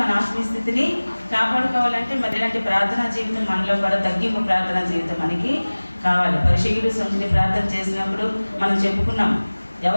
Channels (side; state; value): both; inverted; correlation -1.00